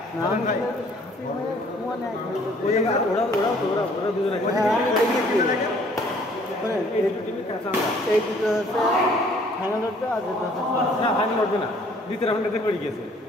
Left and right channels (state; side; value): normal; both; correlation 0.59